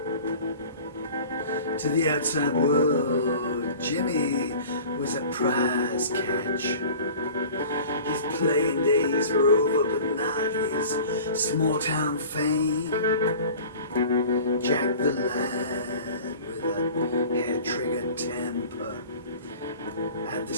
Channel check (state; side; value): inverted; both; correlation -0.42